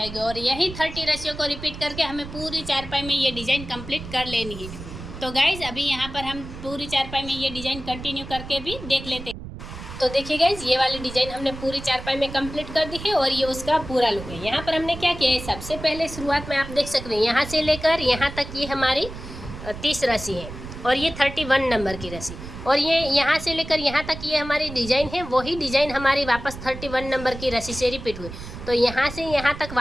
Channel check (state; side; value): noise; right; rumble, 11 dB below the sound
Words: और यही 30 रस्सियों को रिपीट करके हमें पूरी चारपाई में ये डिज़ाइन कंप्लीट कर लेनी है। तो गाइज अभी यहाँ पर हम पूरी चारपाई में ये डिज़ाइन कंटिन्यू करके भी देख लेते हैं। तो देखिए गाइज ये वाली डिज़ाइन हमने पूरी चारपाई में कंप्लीट कर दी है और ये उसका पूरा लुक है। यहाँ पर हमने क्या किया है, सबसे पहले शुरुआत में आप देख सकते हैं यहाँ से लेकर यहाँ तक ये हमारी 30 रस्सी है और ये 31 नंबर की रस्सी और ये यहाँ से लेकर यहाँ तक ये हमारी डिज़ाइन है। वही डिज़ाइन हमारी वापस 31 नंबर की रस्सी से रिपीट हुई। तो यहाँ से यहाँ तक